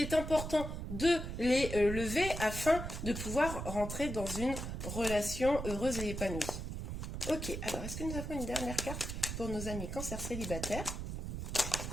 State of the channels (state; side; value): noise; right; rumble, 5 dB below the sound